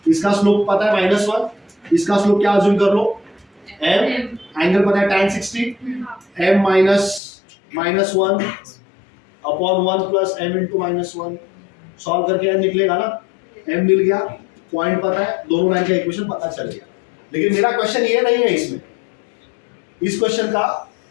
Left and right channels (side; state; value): right; drops out; at 7.2 s